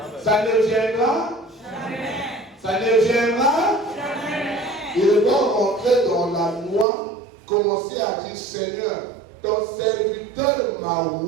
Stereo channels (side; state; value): left; drops out; at 6.9 s